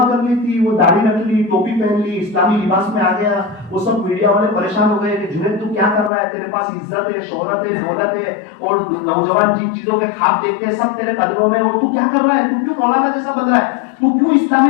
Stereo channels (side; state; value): right; drops out; at 6.1 s